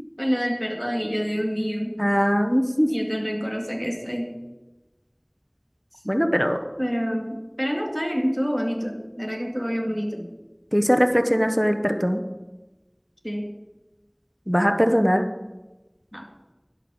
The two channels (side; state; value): both; identical; correlation 1.00